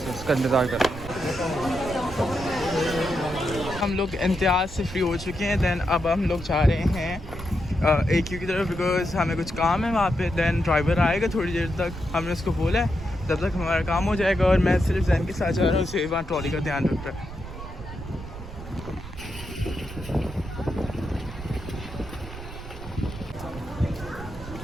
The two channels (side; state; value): right; noise; rumble, 12 dB below the sound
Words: उसका इंतज़ार कर रहे हैं। हम लोग इम्तियाज़ से फ्री हो चुके हैं। दैन अब हम लोग जा रहे हैं AQ की तरफ, बिकॉज हमें कुछ काम है वहाँ पे। दैन ड्राइवर आएगा थोड़ी देर तक, हमने उसको बोला है तब तक हमारा काम हो जाएगा। और मैं सिर्फ जैन के साथ जा रहा हूँ, उसे वहाँ ट्रॉली का ध्यान रख रहा है।